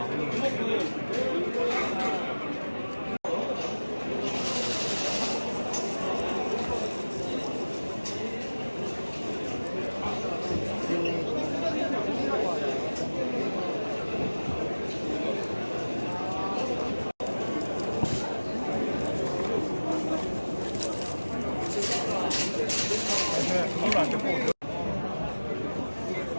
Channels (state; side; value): inverted; both; correlation -1.00